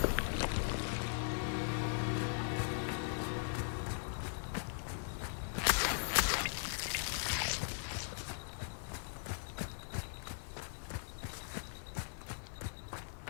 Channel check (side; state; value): right; silent; digital silence